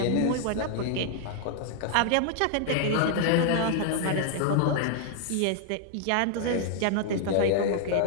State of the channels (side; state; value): both; different; correlation -0.01